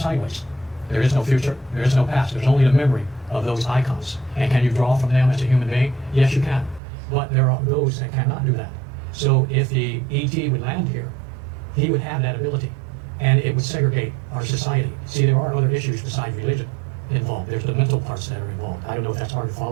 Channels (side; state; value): left; drops out; at 6.8 s